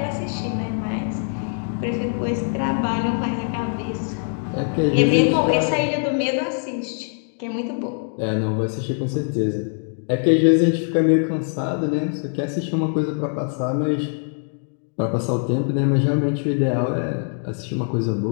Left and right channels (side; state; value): right; silent; 58 dB below the other